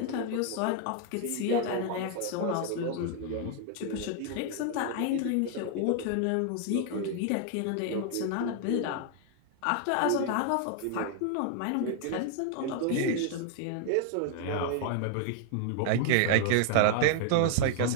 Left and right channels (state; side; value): different; both; correlation 0.00